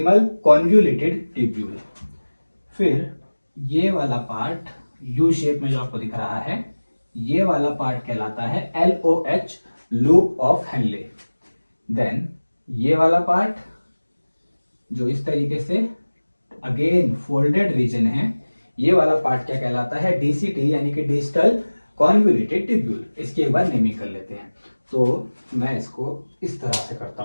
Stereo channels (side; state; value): both; inverted; correlation -1.00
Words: कॉन्वोल्यूटेड ट्यूब्यूल। फिर ये वाला पार्ट यू शेप में जो आपको दिख रहा है, ये वाला पार्ट कहलाता है LOH, loop of Henle. Then ये वाला पार्ट जो इस तरीके से अगेन फोल्डेड रीजन है, ये वाला पार्ट क्या कहलाता है? DCT यानी कि डिस्टल कॉन्वोल्यूटेड ट्यूब्यूल। इसकी एक बार नेमिंग कर लेते हैं। तो मैं इसको इस तरह से करता